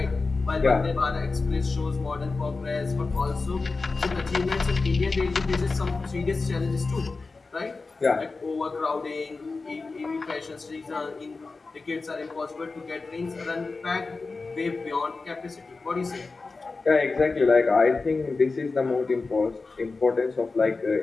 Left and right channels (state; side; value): quieter; right; 3.9 dB